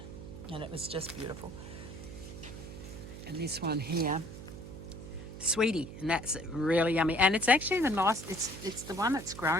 and it was just beautiful. And this one here, Sweetie, and that's really yummy. And it's actually the nice. It's the one that's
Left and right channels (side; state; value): right; noise; hum, 12 dB below the sound